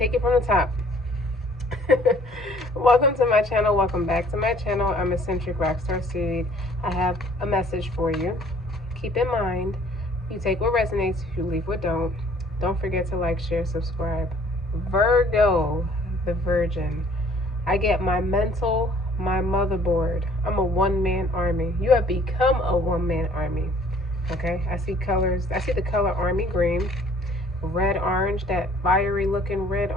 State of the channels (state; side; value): normal; both; correlation 0.57